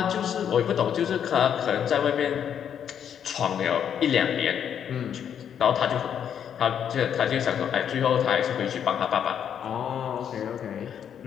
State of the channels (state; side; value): quieter; right; 8.7 dB